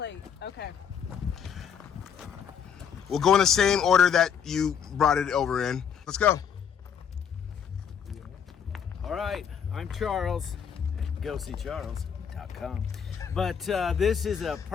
Okay. We'll go in the same order that you brought it over in. Let's go. All right, I'm Charles. GoSeeCharles.com. But this is a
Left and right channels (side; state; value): right; quieter; 7.5 dB